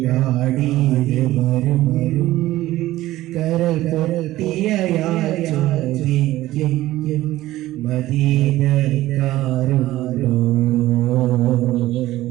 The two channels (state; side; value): quieter; left; 15.9 dB